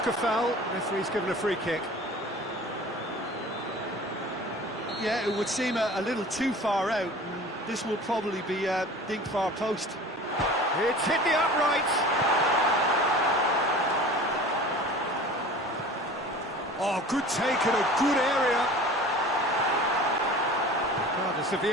a foul. Referee's given a free kick. Yeah, it would seem a little too far out. This will probably be dink far post. It's hit the upright. Oh, good take in a good area. Regardless of the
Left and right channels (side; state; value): both; normal; correlation 0.41